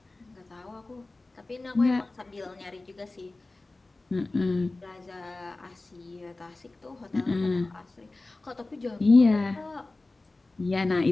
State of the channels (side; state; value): right; quieter; 3.1 dB